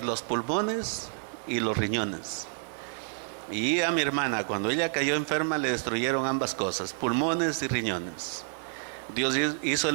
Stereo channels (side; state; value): left; silent; 57 dB below the other